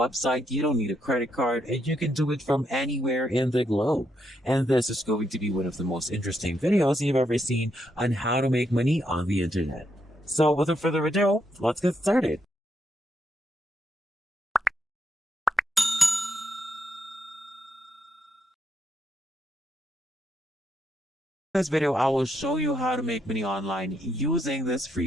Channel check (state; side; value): normal; both; correlation 0.78